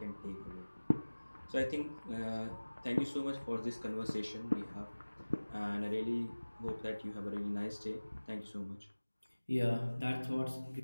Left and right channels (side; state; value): both; inverted; correlation -1.00